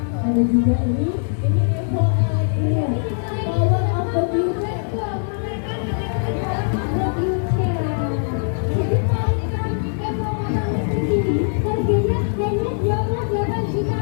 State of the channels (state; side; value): silent; right; digital silence